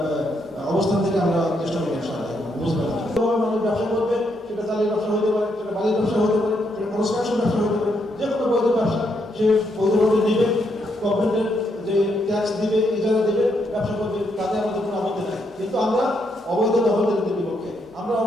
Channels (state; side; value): normal; both; correlation 0.77